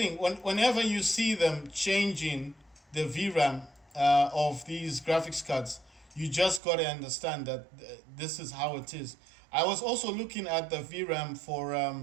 Whenever you see them changing the VRAM of these graphics cards, you just got to understand that this is how it is. I was also looking at the VRAM for,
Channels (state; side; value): drops out; left; at 6.6 s